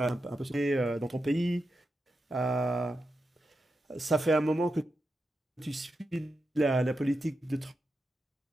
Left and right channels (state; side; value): normal; both; correlation 0.88